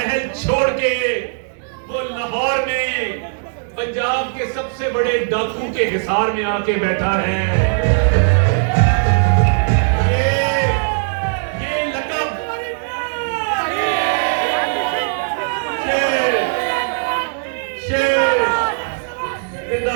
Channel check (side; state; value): left; silent; digital silence